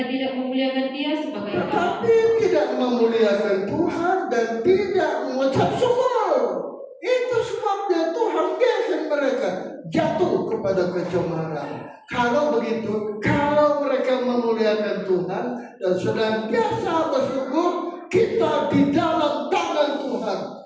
tidak memuliakan dia sebagai Allah. tetapi tidak memuliakan Tuhan dan tidak mengucap syukur. Itu sebabnya Tuhan biarkan mereka jatuh kepada kecemaran. Kalau begitu, kalau mereka memuliakan Tuhan dan senantiasa bersyukur, kita di dalam tangan Tuhan,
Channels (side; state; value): both; identical; correlation 1.00